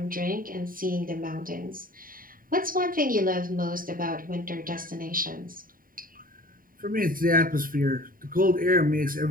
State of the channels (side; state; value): left; late; 0.41 ms